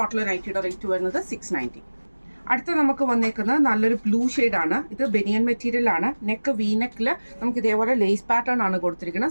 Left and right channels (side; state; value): both; inverted; correlation -1.00